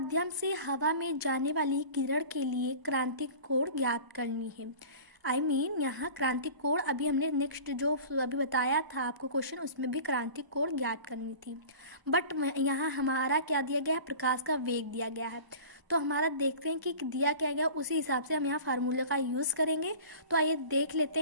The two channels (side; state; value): left; late; 1.0 ms